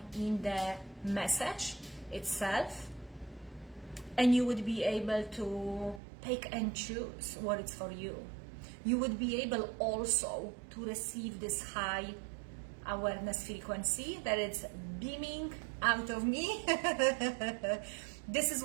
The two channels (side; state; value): left; drops out; at 6.0 s